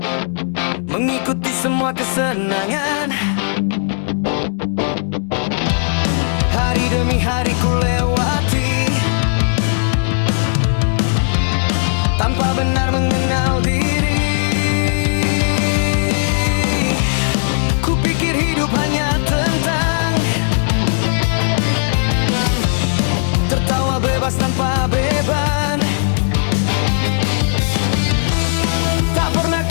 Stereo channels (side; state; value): right; silent; digital silence